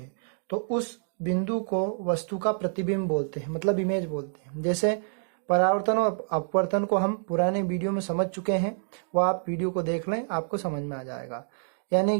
तो उस बिंदु को वस्तु का प्रतिबिंब बोलते हैं, मतलब इमेज बोलते हैं। जैसे परावर्तन और अपवर्तन को हम पुराने वीडियो में समझ चुके हैं, वो आप वीडियो को देख लें, आपको समझ में आ जाएगा। यानी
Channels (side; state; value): left; silent; digital silence